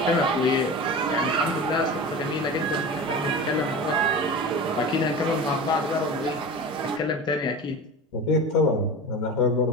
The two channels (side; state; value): both; normal; correlation 0.31